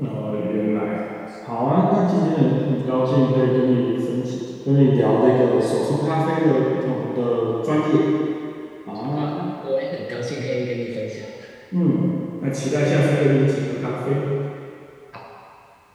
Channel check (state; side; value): identical; both; correlation 1.00